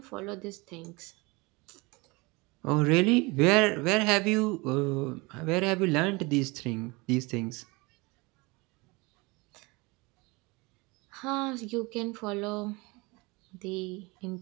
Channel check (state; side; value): quieter; left; 25.4 dB